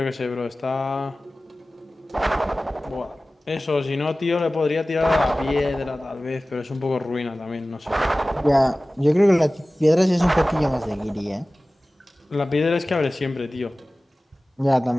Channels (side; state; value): both; normal; correlation 0.97